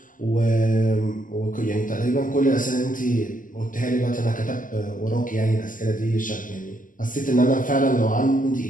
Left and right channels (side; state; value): right; late; 0.38 ms